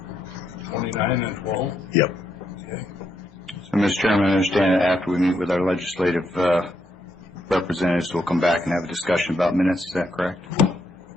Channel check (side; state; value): both; normal; correlation 0.78